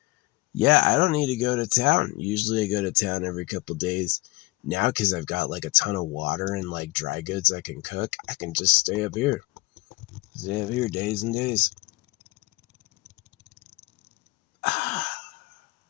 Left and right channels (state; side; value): quieter; right; 22.0 dB